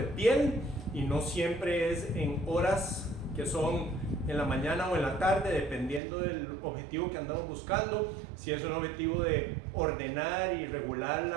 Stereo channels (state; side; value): drops out; left; at 6.0 s